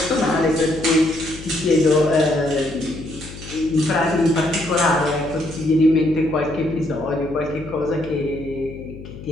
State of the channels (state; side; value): noise; left; hum, 14 dB below the sound